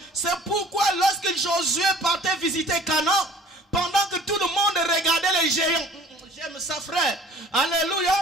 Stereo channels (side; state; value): both; normal; correlation 0.50